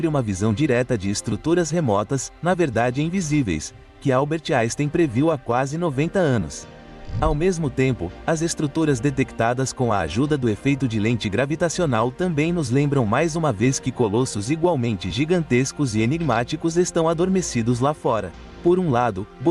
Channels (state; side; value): identical; both; correlation 1.00